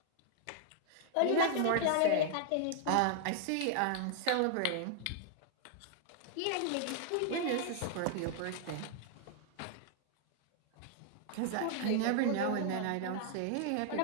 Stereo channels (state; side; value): different; both; correlation 0.00